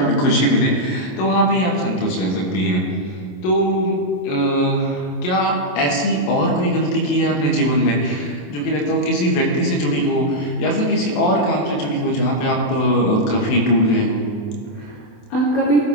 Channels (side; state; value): right; late; 27 ms